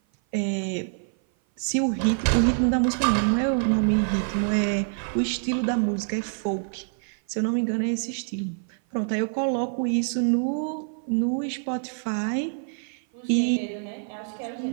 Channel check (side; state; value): left; silent; 55 dB below the other